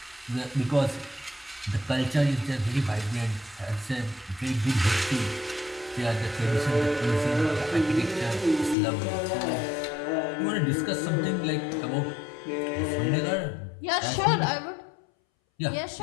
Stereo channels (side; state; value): right; drops out; at 8.8 s